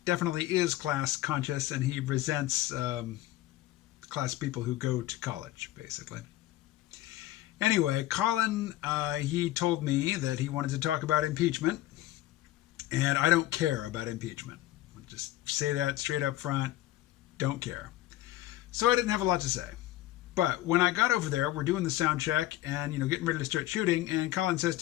definitely is class conscious, and he resents class people who go to college, basically. Anyway, Colin, he told me that he wanted to talk about impeachment, and I don't care about impeachment. I'll just say that straight up front, don't care. So I didn't have a lot to say. But when I got over there, we're doing the sound check and, getting ready to start shooting, and Colin says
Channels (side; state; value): right; quieter; 15.5 dB